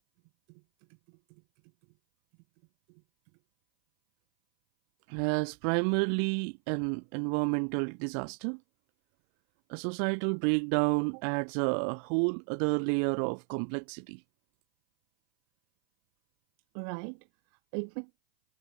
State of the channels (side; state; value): left; silent; 57 dB below the other